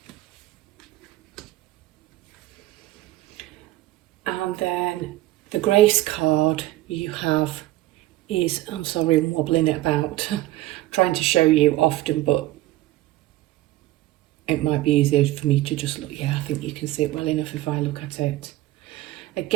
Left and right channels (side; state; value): left; quieter; 16.3 dB